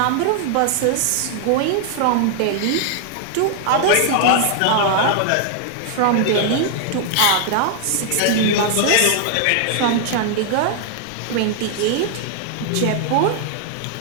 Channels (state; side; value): different; both; correlation 0.00